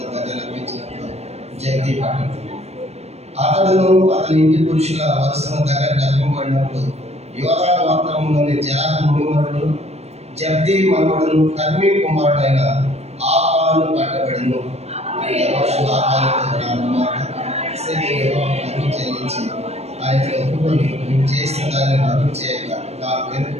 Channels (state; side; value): late; left; 0.31 ms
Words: దగ్గర రప్పించినప్పుడు జబ్దీ పట్టబడెను. అతడును అతని ఇంటి పురుషుల వరుసను దగ్గర రప్పింపబడినప్పుడు యోధా గోత్రంలోని జెరాహు కుమారుడు జబ్దీ మనవడును కర్మీ కుమారుడైన ఆహాను పట్టబడెను. చెల్లించి ఆయన ఒప్పుకొని నువ్వు చేసిన దాన్ని మరుగు చేయక నాకు వెనుక